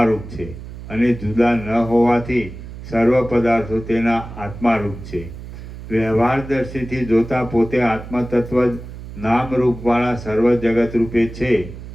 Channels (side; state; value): right; noise; hum, 12 dB below the sound